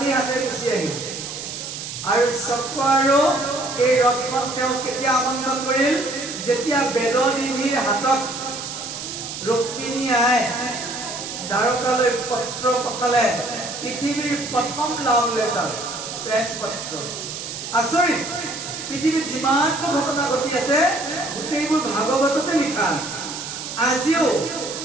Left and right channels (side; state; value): right; noise; hiss, 8 dB below the sound